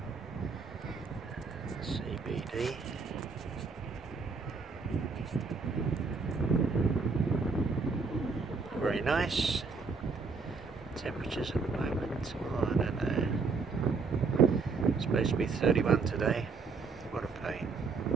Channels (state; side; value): quieter; left; 4.6 dB